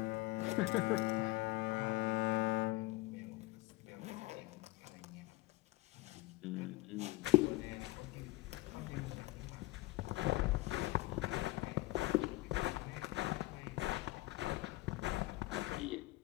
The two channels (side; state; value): right; quieter; 20.1 dB